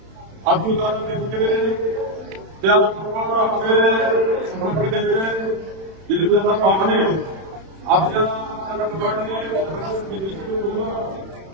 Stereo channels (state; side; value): late; left; 31 ms